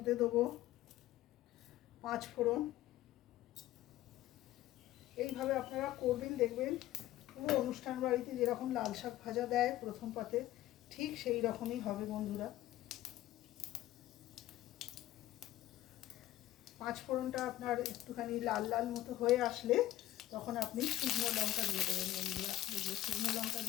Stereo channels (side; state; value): right; quieter; 14.9 dB